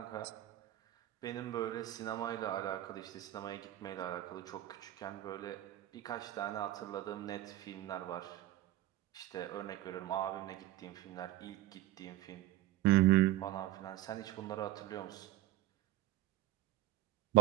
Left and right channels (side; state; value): left; quieter; 15.3 dB